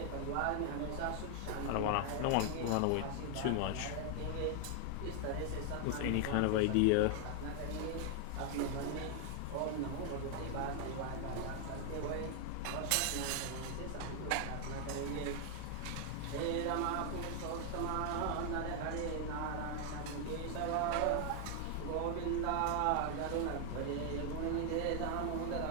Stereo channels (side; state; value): both; different; correlation 0.00